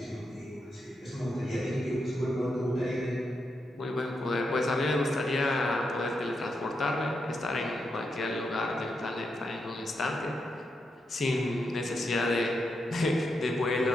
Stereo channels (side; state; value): both; normal; correlation 0.84